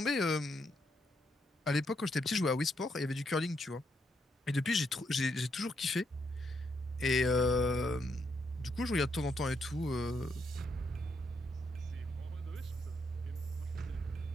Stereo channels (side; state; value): both; normal; correlation 0.78